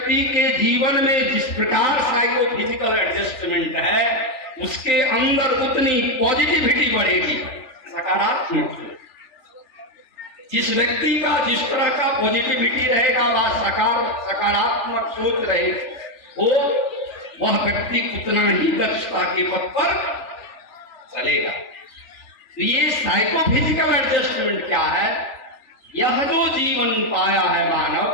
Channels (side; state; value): right; late; 3.4 ms